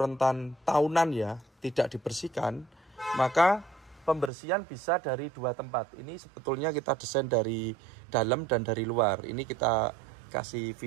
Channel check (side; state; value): left; drops out; at 4.3 s